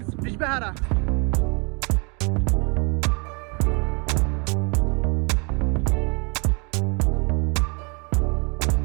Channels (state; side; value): quieter; left; 33.2 dB